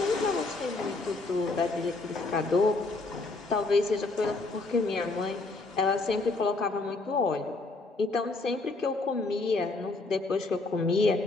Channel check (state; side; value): quieter; right; 3.4 dB